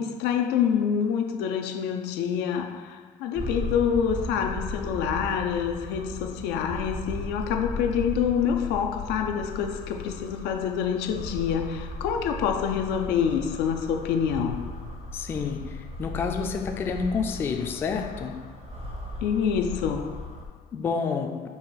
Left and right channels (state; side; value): quieter; right; 6.4 dB